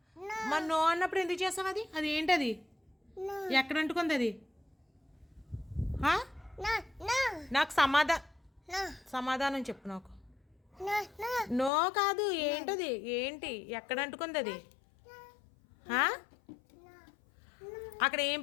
మరి నో అన్నప్పుడు ఎందుకు చేసావు? అది అది ఏంటది? ఎక్కడ అంటుకుంది అది? నాకు సమాధానం చెప్పు నాకు. నో కాదు, ఏంటది? ఏంటి ఎక్కడ అంటుకుంది అది? అక్కడ ఏం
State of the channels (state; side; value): drops out; right; at 11.7 s